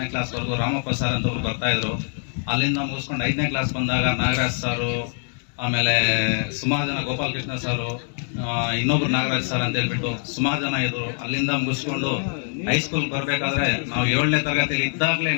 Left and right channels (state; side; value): silent; right; 59 dB below the other